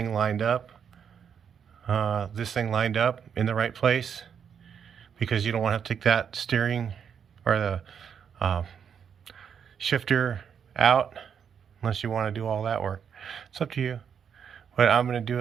lined up. In the right place, because you don't want to have to take that steering or the shifter out unless you want to do all that work. It's up to you, but I'm going to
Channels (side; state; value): left; quieter; 7.6 dB